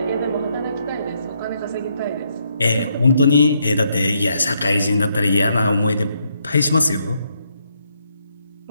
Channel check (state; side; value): inverted; both; correlation -0.75